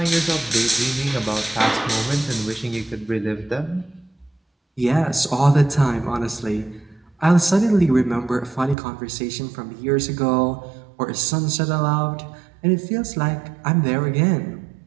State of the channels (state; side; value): drops out; left; at 8.8 s